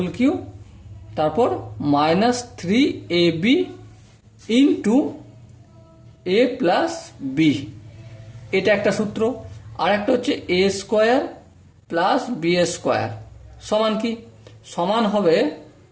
কিউ, তারপর minus 3ab into A plus B. এটা একটা সূত্র। আর একটা হচ্ছে এ স্কোয়ার প্লাস বি স্কোয়ার সমান কি? সমান হবে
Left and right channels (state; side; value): identical; both; correlation 1.00